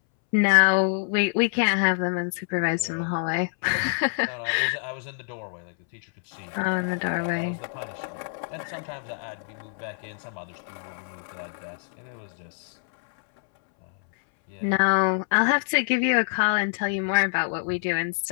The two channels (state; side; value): silent; right; 61 dB below the other